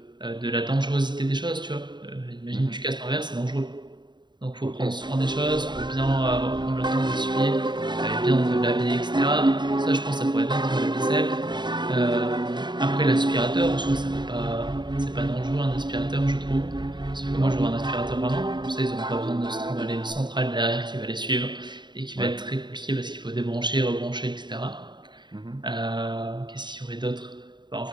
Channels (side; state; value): left; late; 0.22 ms